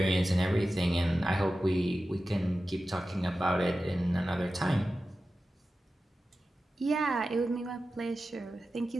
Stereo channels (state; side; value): normal; both; correlation 0.93